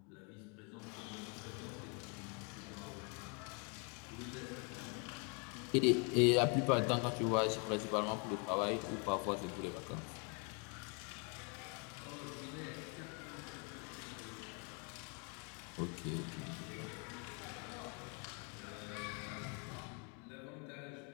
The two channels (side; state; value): right; quieter; 35.7 dB